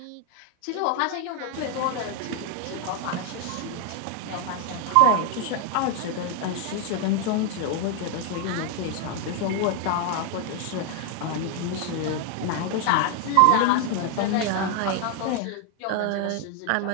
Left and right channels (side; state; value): both; different; correlation 0.01